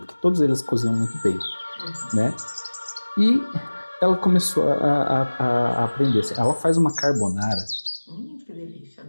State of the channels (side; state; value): both; inverted; correlation -1.00